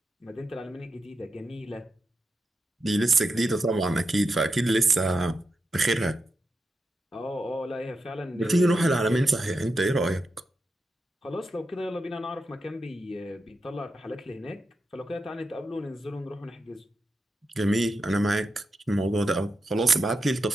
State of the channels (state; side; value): normal; both; correlation 0.88